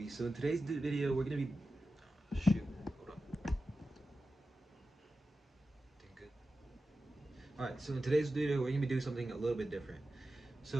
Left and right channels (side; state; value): both; normal; correlation 0.93